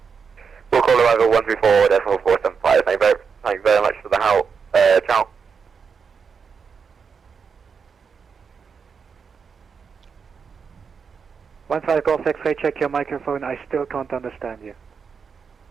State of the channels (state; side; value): quieter; left; 5.9 dB